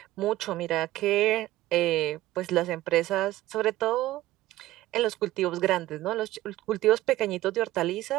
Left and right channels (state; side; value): quieter; left; 16.0 dB